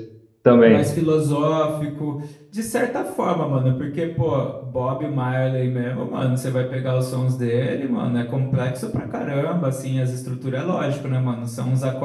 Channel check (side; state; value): both; identical; correlation 1.00